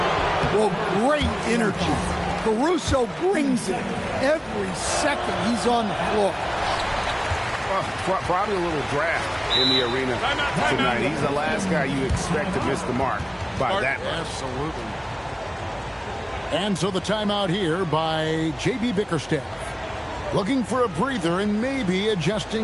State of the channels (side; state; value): both; identical; correlation 1.00